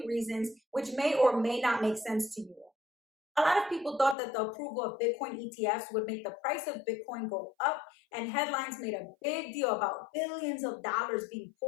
reasons, which may or may not make sense to you. A lot of people thought that the approval of Bitcoin ETFs would make the price of Bitcoin go up, and headlines made a big deal about billions of dollars being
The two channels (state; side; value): drops out; right; at 4.2 s